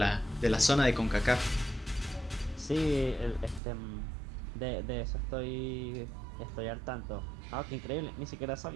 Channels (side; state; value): left; drops out; at 3.6 s